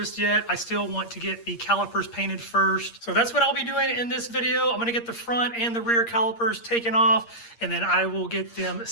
yet. I still want to get the calipers painted first. So that's what I'll be doing in this video. I'm gonna get the front and the rear calipers taken off, and then I will get them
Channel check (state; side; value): late; right; 8.6 ms